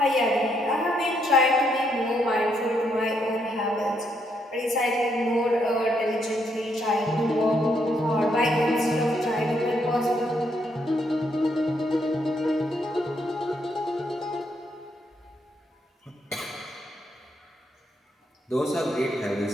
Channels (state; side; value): normal; both; correlation 0.75